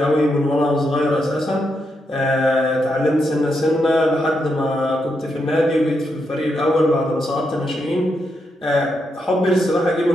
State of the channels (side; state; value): both; normal; correlation 0.82